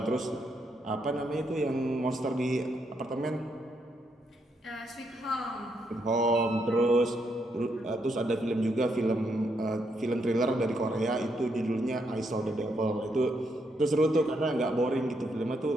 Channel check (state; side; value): normal; both; correlation 0.77